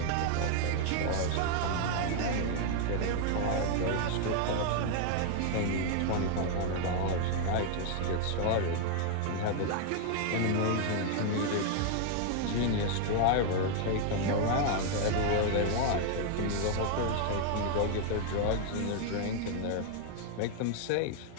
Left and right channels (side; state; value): both; different; correlation 0.00